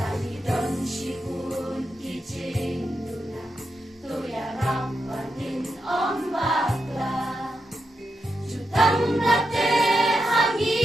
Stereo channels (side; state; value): both; normal; correlation 0.86